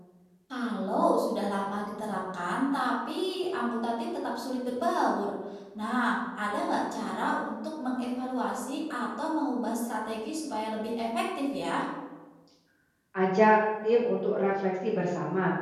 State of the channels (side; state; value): both; identical; correlation 1.00